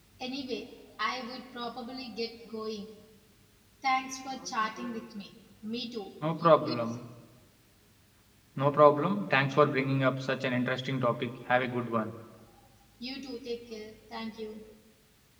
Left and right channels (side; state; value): both; identical; correlation 1.00